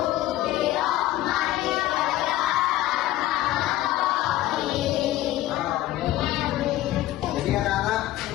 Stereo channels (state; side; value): quieter; right; 15.0 dB